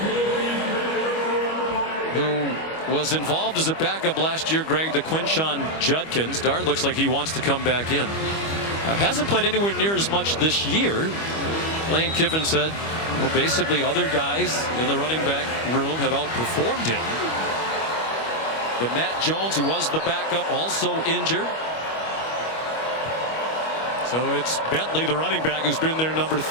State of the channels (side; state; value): right; late; 25 ms